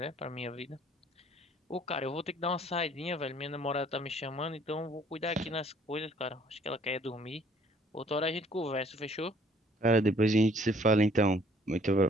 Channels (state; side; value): normal; both; correlation 0.59